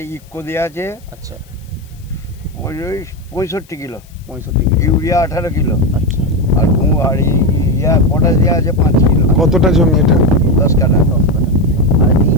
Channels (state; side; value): noise; left; hiss, 29 dB below the sound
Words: ইক্কো দেওয়া আছে। আচ্ছা, ওই 65 কিলো। 65 কিলো। Urea 18 kilo. আচ্ছা। আর পটাশ দেওয়া আছে 5 কিলো। কতটা জমি এটা? 10 কাঠা। 10 কাঠা। আর এই